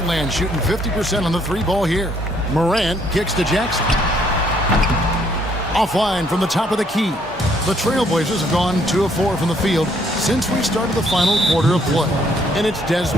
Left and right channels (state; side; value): normal; both; correlation 0.67